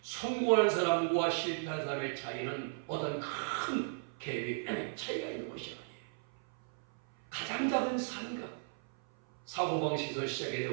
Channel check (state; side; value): silent; left; 54 dB below the other